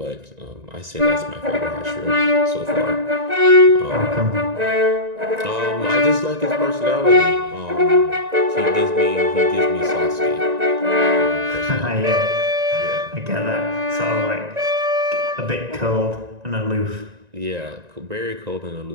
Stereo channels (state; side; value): late; left; 1.9 ms